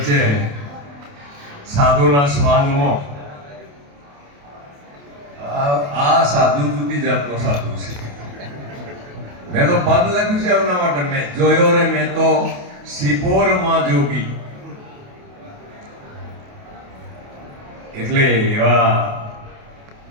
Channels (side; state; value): left; late; 28 ms